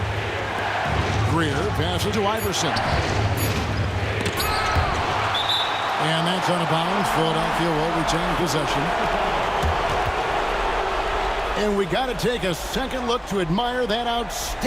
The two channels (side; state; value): both; identical; correlation 1.00